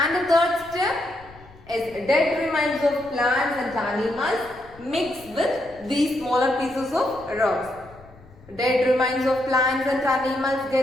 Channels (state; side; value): noise; left; rumble, 23 dB below the sound